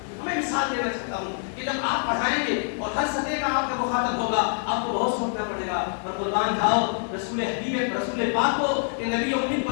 میں مثال دینا چاہتا ہوں کہ جب آپ پڑھائیں گے اور ہر سطح کا آپ کا مخاطب ہوگا، آپ کو بہت سوچنا پڑے گا، اور قربان جاؤ رسول حبیب رسول پاک کو کہ نبی امید کو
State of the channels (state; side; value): silent; right; 55 dB below the other